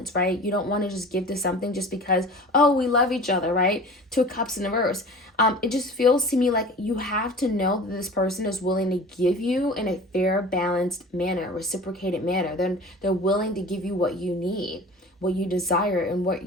right? You don't want to just give to something just because, oh, we love each other, right? Two of Cups in reverse. It just feels to me like you have to know that this person is willing to give you in a fair, balanced manner, reciprocated manner. Then they're willing to give you what you need, what you desire, and what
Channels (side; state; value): both; normal; correlation 0.40